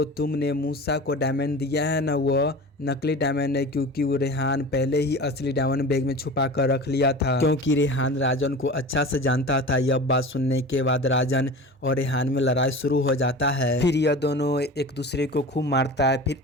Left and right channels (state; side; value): normal; both; correlation 0.35